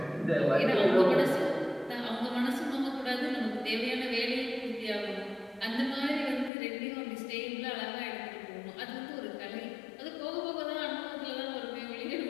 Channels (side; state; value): right; drops out; at 6.5 s